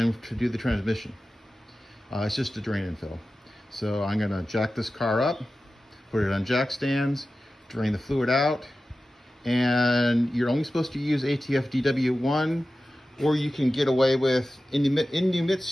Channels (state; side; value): normal; both; correlation 0.94